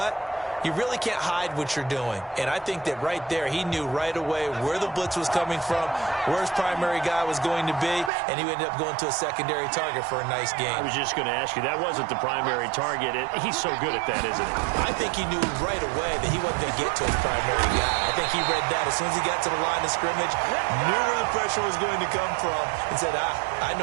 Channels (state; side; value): drops out; left; at 8.1 s